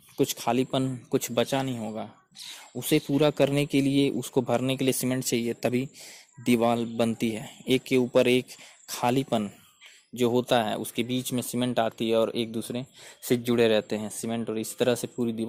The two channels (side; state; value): both; identical; correlation 1.00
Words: कुछ खालीपन, कुछ बचा नहीं होगा, उसे पूरा करने के लिए, उसको भरने के लिए सीमेंट चाहिए, तभी दीवार बनती है। एक के ऊपर एक खालीपन जो होता है उसके बीच में सीमेंट आती है और एक दूसरे से जुड़े रहते हैं सीमेंट, और इस तरह से पूरी